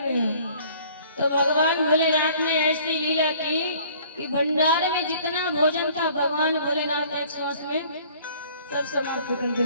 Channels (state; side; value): inverted; both; correlation -0.54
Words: गया, तो भगवान भोलेनाथ ने ऐसी लीला की कि भंडारे में जितना भोजन था भगवान भोलेनाथ एक सांस में सब समाप्त कर